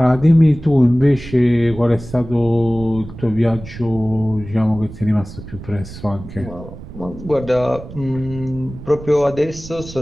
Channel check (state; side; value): noise; right; rumble, 14 dB below the sound